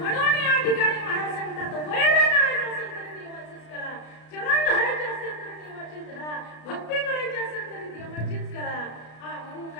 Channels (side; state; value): right; late; 33 ms